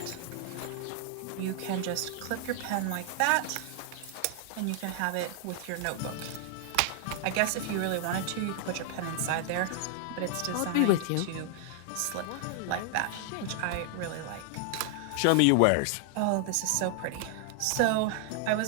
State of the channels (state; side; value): different; both; correlation 0.00